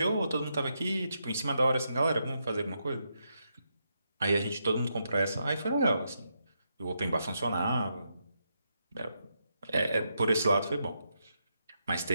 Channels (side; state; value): both; inverted; correlation -0.82